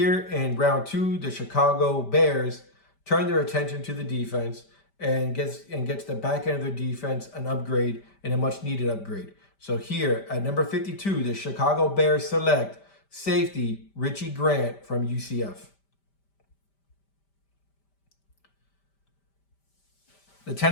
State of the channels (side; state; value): right; late; 5.1 ms